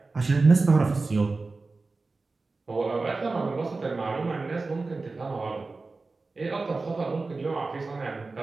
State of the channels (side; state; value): left; quieter; 3.7 dB